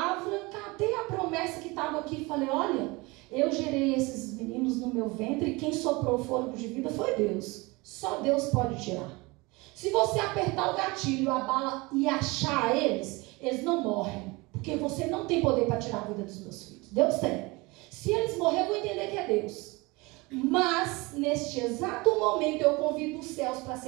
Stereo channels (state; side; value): quieter; left; 24.4 dB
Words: catei a promessa que estava aqui e falei: olha, eu gerei esses meninos no meu ventre e quem soprou o fôlego de vida foi Deus. Só Deus pode tirar. Se você apertar o gatilho, a bala e achar eles não morrem. Porque você não tem poder para tirar a vida dos meus filhos. Deus tem. Se eles morrerem, eu vou entender que é Deus. Mas, neste exato momento, eu convido os céus para